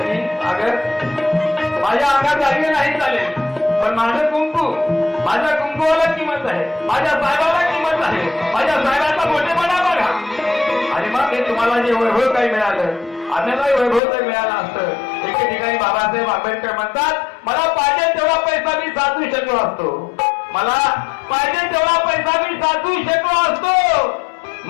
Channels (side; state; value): right; drops out; at 14.0 s